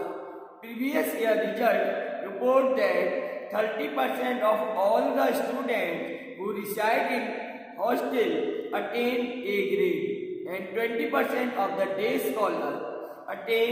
Previous year result report that 30% of all the students who reside in hostel attain A grade and 20% of the day scholars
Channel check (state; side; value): identical; both; correlation 1.00